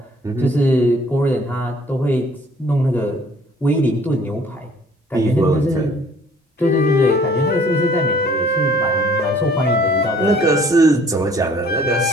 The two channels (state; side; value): normal; both; correlation 0.56